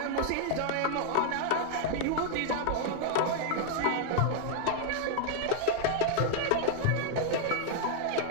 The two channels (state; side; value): different; both; correlation 0.00